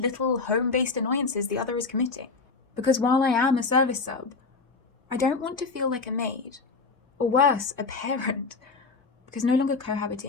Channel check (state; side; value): quieter; right; 4.2 dB